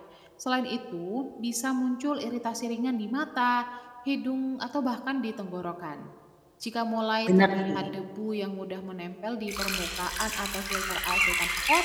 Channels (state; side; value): identical; both; correlation 1.00